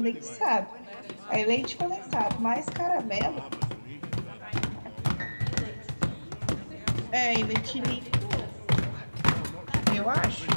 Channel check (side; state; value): both; inverted; correlation -1.00